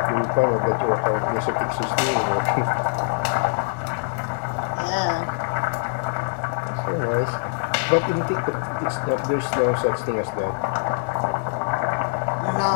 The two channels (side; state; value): right; silent; 63 dB below the other